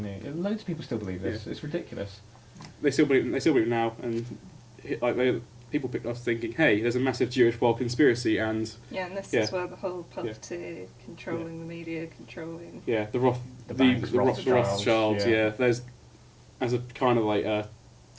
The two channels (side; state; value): both; identical; correlation 1.00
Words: knew. Loads of people still believe this. It's ridiculous. They still believe it now, and people picked us thinking, hey, there's a massive Jewish world conspiracy, and Yeah, and this Yeah. is where the whole puppeteer, controlling the media, controlling. yeah, the banks, Rothschilds, yeah. yeah. There's as a kind of like a